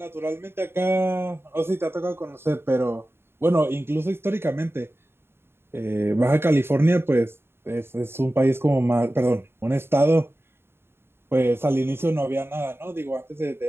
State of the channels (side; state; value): left; late; 0.11 ms